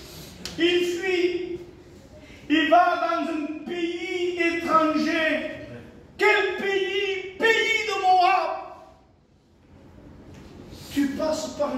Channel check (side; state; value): both; identical; correlation 1.00